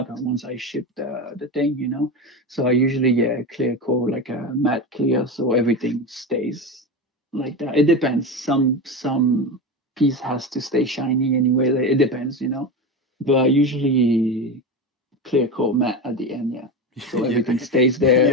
once I ship the thing. So I usually clear coat like a matte clear, so everything stays like that. It depends. Some piece has to stay shiny anyway. It depends. But I usually clear coat matte at the end, yeah. So Yeah, everything stays there.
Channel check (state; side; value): normal; both; correlation 0.21